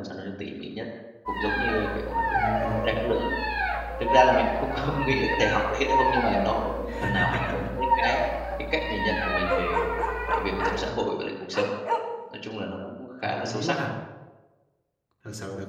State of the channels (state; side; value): identical; both; correlation 1.00